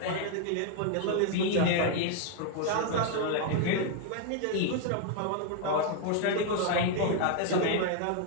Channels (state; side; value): different; both; correlation 0.01